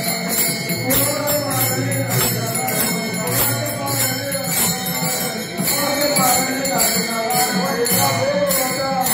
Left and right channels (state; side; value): identical; both; correlation 1.00